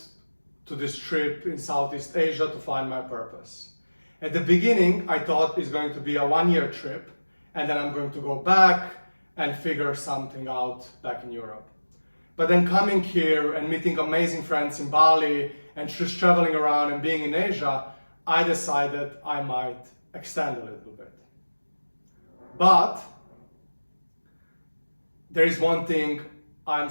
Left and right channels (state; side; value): inverted; both; correlation -1.00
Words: to this trip in Southeast Asia to find my purpose. At the beginning, I thought it's going to be a one-year trip, and then I'm going to go back and figure something out back in Europe. But then coming here and meeting amazing friends in Bali and just traveling around and being in Asia, I decided I might extend a little bit. But there is one thing I'm